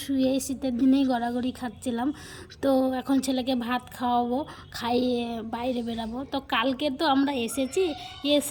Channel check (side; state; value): both; identical; correlation 1.00